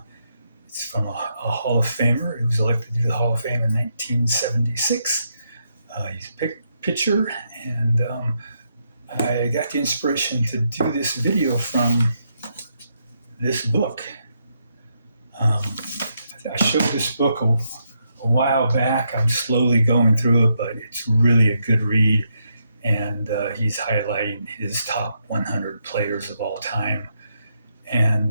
It's from a Hall of Famer who was elected to the Hall of Fame in 1976. He's a pitcher, and I got the inspiration to do this video from this book. I showed this book a while back. I'm slowly going through it, but it's really a good read. And he's highlighting his top 100 players of all time.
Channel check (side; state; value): both; inverted; correlation -0.79